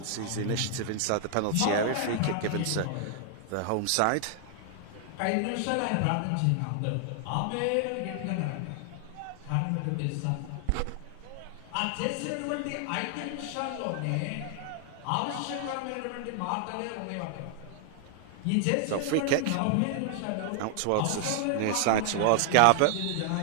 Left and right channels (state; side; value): different; both; correlation 0.00